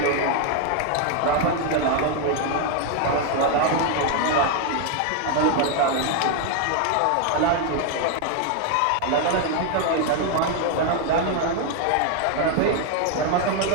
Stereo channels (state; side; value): different; both; correlation 0.01